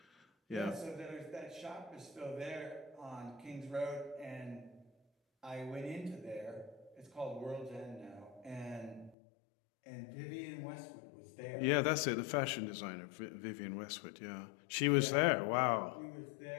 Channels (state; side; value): drops out; right; at 9.2 s